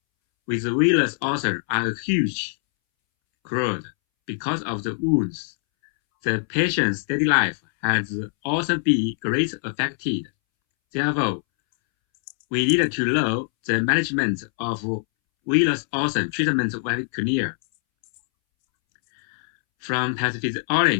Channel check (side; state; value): right; silent; 63 dB below the other